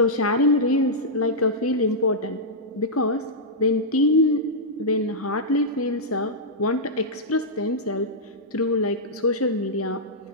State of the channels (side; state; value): both; normal; correlation -0.10